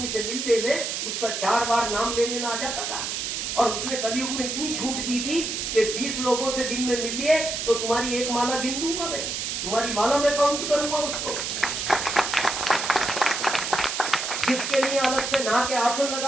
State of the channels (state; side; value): noise; right; hiss, 3 dB below the sound